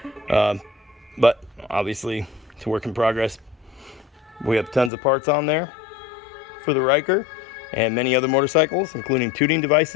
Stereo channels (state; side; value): drops out; right; at 4.9 s